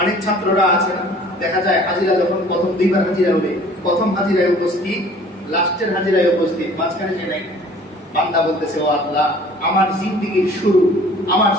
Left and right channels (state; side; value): normal; both; correlation 0.50